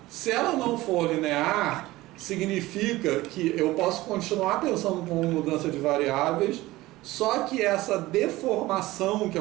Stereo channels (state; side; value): quieter; left; 18.3 dB